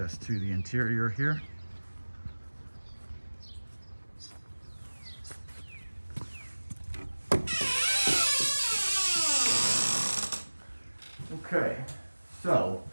to the interior here. Okay, so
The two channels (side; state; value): both; inverted; correlation -1.00